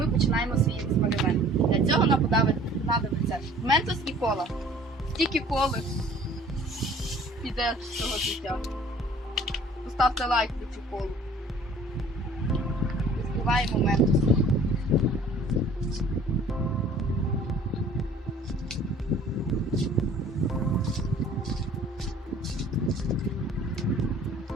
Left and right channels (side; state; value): both; normal; correlation 0.51